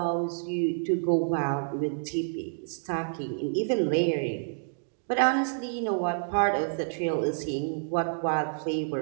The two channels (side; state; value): left; silent; digital silence